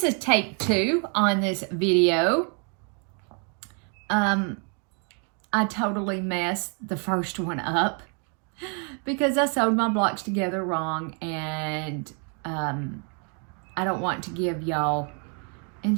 is take 2 on this video. I totally messed the first one up because I sewed my blocks together wrong, and I don't want to give y'all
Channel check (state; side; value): quieter; left; 38.4 dB